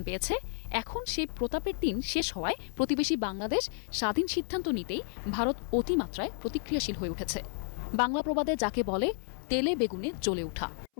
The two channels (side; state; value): right; silent; 57 dB below the other